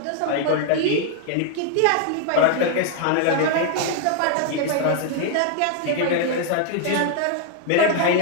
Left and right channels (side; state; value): both; different; correlation 0.00